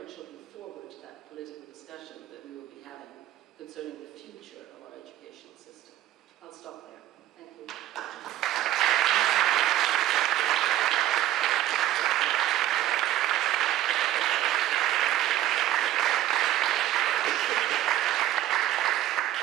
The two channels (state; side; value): quieter; left; 13.3 dB